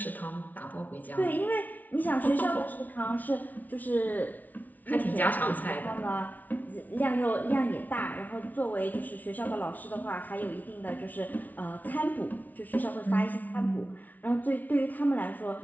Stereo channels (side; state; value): right; late; 0.078 ms